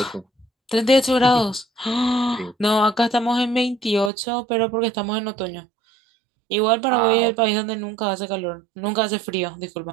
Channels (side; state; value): left; drops out; at 4.1 s